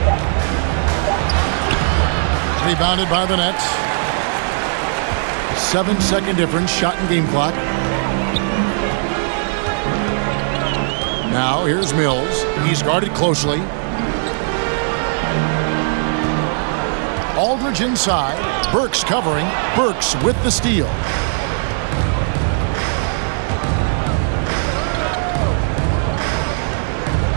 Rebounded by the Nets. 7-second difference, shot and game clock. Now here's Mills. He's guarded closely. Aldridge inside. Burks covering. Burks with the steal.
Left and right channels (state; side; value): silent; left; digital silence